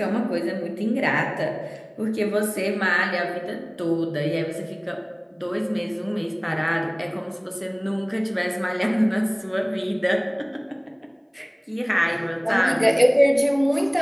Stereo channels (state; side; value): identical; both; correlation 1.00